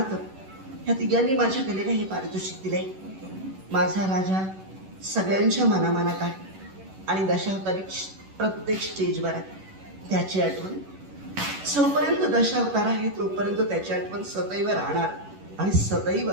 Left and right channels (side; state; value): left; late; 11 ms